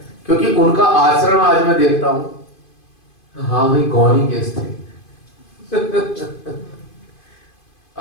क्योंकि उनका आचरण आज मैं देखता हूँ, हाँ भाई गौनी केस थे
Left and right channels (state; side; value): late; right; 2.5 ms